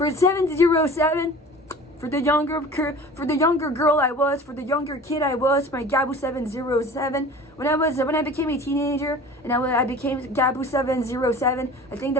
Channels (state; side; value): normal; both; correlation 0.41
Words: 707, for the younger girl I was, for the younger kid I was, my Gabu 707. When I became a teenager and I became Gabu 707, I think